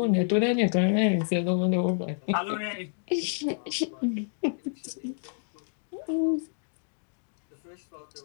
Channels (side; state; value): right; silent; digital silence